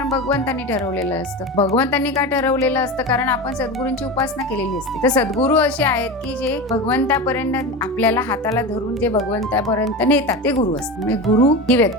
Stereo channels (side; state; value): both; normal; correlation 0.25